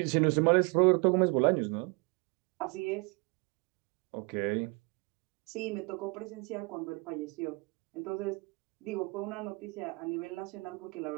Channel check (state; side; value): quieter; left; 29.5 dB